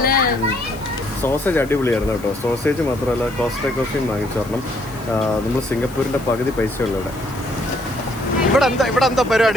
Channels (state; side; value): noise; left; hiss, 21 dB below the sound